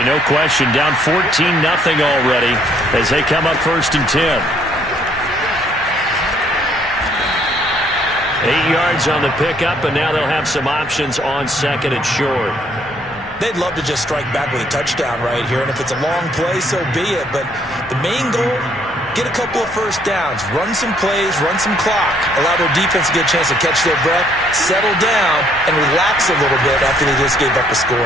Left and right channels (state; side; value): normal; both; correlation 0.66